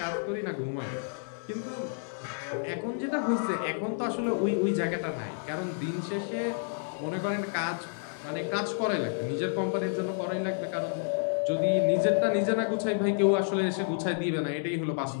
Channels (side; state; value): right; silent; digital silence